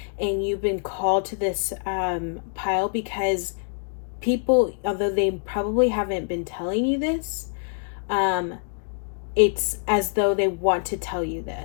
And you've been called to this pile because people, although they probably haven't been telling you this, it's as though they want to tell you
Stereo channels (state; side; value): silent; right; digital silence